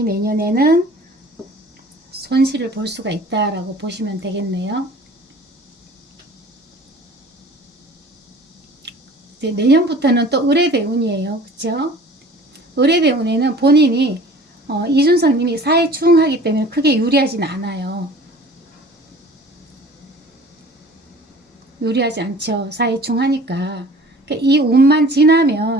내년에는 손실을 볼 수가 있다라고 보시면 되겠네요. 이제 내년부터는 또 을의대운이에요. 그쵸? 을의대운에는 본인이 이준성님이 사회충하기 때문에 크게 유리하진 않아요. 유리하지 않죠. 사회충하니까. 그러니까 이 운만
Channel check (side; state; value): both; normal; correlation 0.46